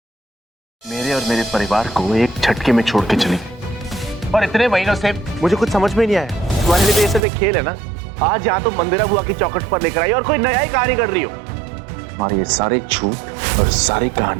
मेरे और मेरे परिवार को एक झटके में छोड़ के चली, और इतने महीनों से मुझे कुछ समझ में नहीं आया। तुम्हारे लिए तो ये सब एक खेल है ना। आज यहाँ तो मंदिरा बुआ की चौखट पर लेकर आई और कोई नया ही कहानी कर रही हो। तुम्हारे ये सारे झूठ और सारी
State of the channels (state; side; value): drops out; left; at 7.2 s